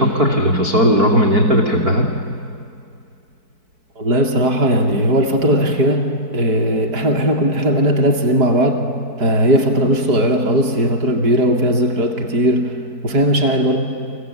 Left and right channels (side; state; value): left; late; 4.6 ms